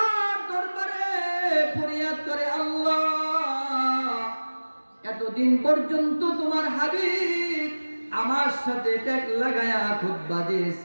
দরবারে ফরিয়াদ করে, আল্লাহ, এতদিন পর্যন্ত তোমার হাবিব আমার সাথে ট্যাগ লাগায়া খুতবা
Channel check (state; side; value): inverted; both; correlation -1.00